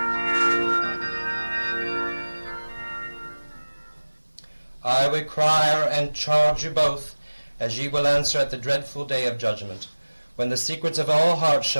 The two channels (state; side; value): inverted; both; correlation -1.00